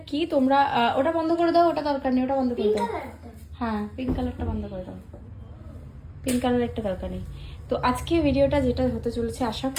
কি তোমরা ওটা বন্ধ করে দাও, ওটা দরকার নেই, ওটা বন্ধ করে দাও। হ্যাঁ, পিঙ্ক কালারটা বন্ধ করে দাও, পিঙ্ক কালার একটা দরকার নেই। তো আজকে ভিডিওটা যেটা হতে চলেছে, আশা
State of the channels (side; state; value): both; identical; correlation 1.00